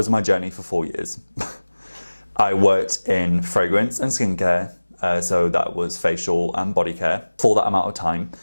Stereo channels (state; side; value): inverted; both; correlation -1.00